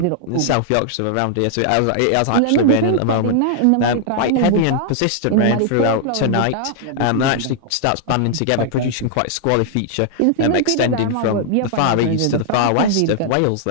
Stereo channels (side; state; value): both; different; correlation -0.01